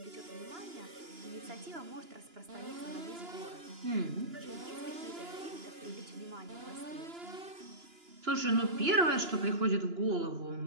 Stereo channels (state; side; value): late; left; 2.9 ms